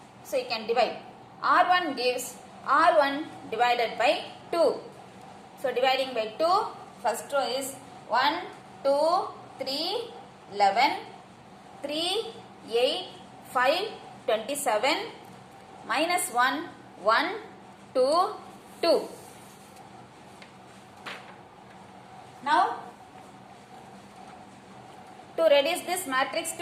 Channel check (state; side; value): identical; both; correlation 1.00